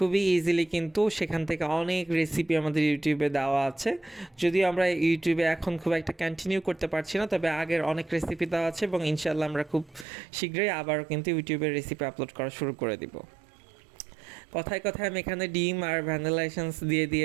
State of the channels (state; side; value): drops out; left; at 10.1 s